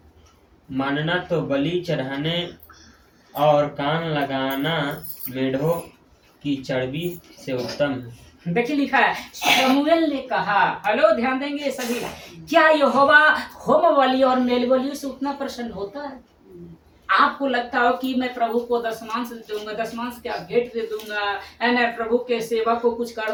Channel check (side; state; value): both; identical; correlation 1.00